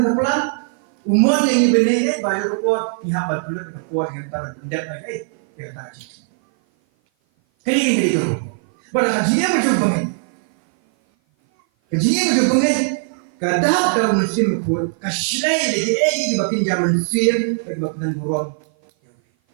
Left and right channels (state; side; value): silent; left; 56 dB below the other